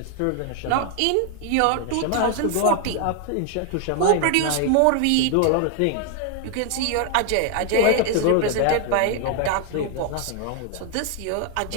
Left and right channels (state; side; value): different; both; correlation 0.00